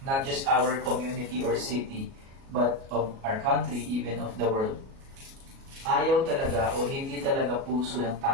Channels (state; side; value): late; left; 37 ms